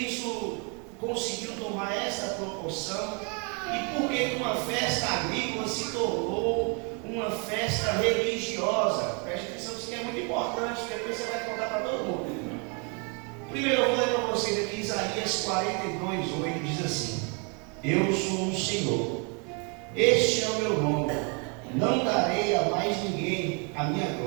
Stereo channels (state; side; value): quieter; left; 35.3 dB